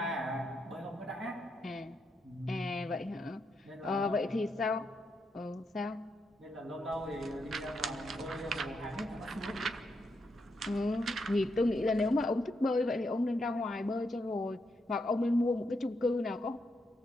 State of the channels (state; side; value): normal; both; correlation 0.81